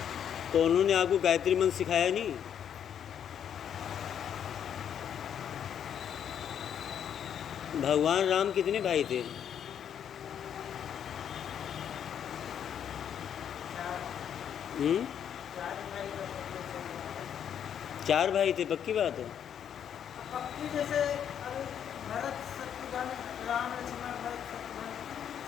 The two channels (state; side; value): quieter; right; 8.9 dB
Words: तो उन्होंने आपको गायत्री मंत्र सिखाया नहीं? भगवान राम कितने भाई थे? चार भाई थे, पक्की बात है? पक्की जैसे भरत शत्रुघ्न राम लक्ष्मण भरत शत्रुघ्न